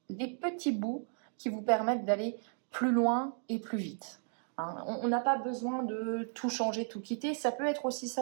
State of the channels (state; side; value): silent; left; 55 dB below the other